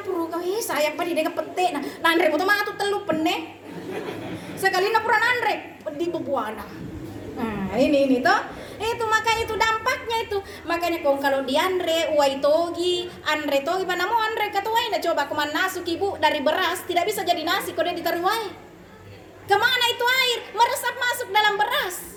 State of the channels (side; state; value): both; identical; correlation 1.00